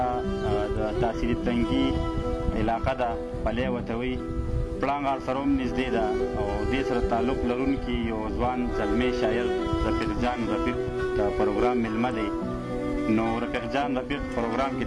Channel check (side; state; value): both; identical; correlation 1.00